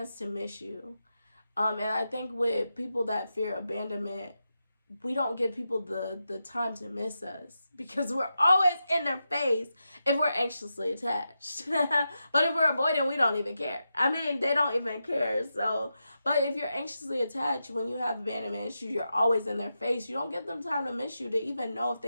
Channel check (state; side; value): inverted; both; correlation -0.88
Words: to miss you. And I think with people that fear abandonment, we don't give people the time to miss us, because we're always in their face if we're anxiously attached. But if we're avoiding, we don't even care. I mean, they don't even care. So, but if you're anxiously attached, when you have abandonment issues, you're always in their face. You don't give them time to miss you, to even know if